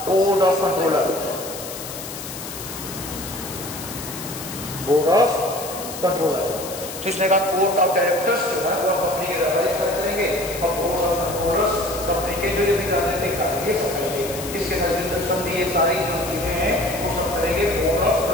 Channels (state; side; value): noise; left; hiss, 10 dB below the sound